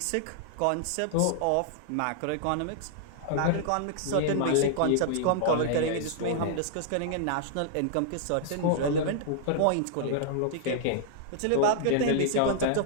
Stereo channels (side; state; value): both; different; correlation -0.01